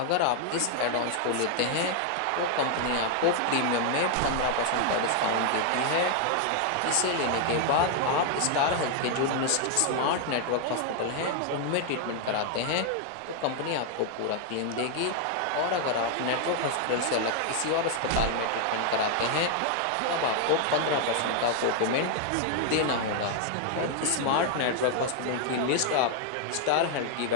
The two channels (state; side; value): different; both; correlation 0.00